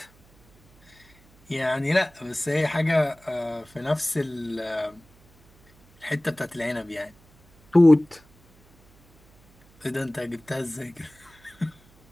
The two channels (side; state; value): right; noise; hum, 29 dB below the sound